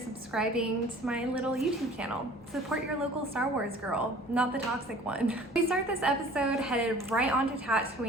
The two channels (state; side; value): normal; both; correlation 0.48